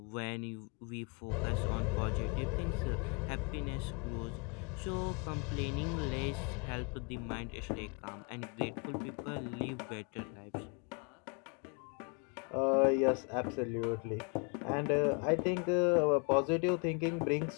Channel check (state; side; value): quieter; right; 33.5 dB